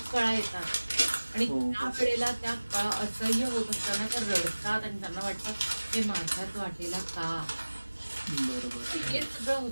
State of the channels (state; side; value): inverted; both; correlation -1.00